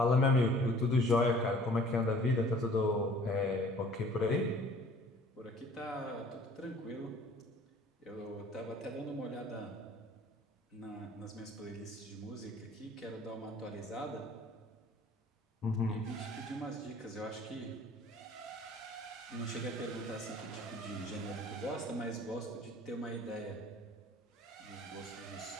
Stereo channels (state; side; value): normal; both; correlation 0.51